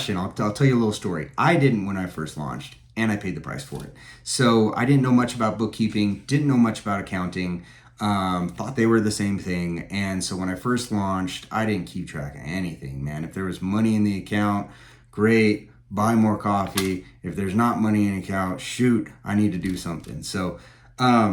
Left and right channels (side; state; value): both; identical; correlation 1.00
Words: I'll tell you a little story. I didn't when I first launched, and I paid the price for it. So I didn't know much about bookkeeping, didn't know much about accounting. Thought they were the same thing. And so when I first launched, I didn't keep track of anything, man. If there was money in the account, great, buy more coffee. If there's not money in the account, shoot, I need to do something. So